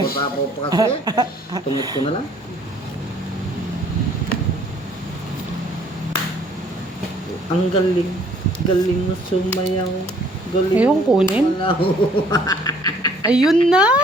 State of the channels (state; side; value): normal; both; correlation 0.59